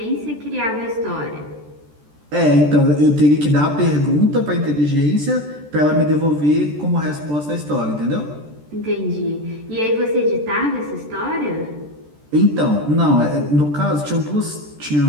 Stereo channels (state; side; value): late; left; 14 ms